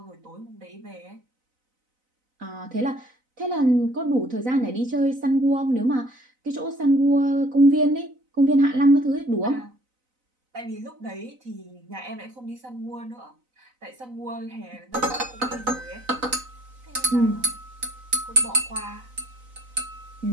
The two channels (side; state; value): left; late; 4.0 ms